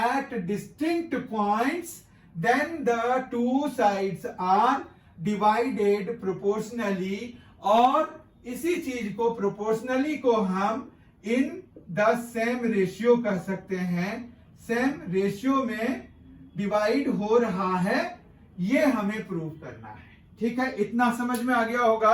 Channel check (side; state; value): both; identical; correlation 1.00